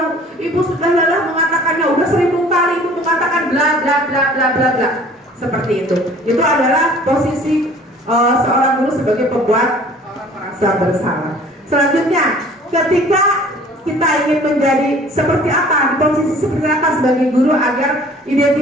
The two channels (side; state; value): both; normal; correlation 0.50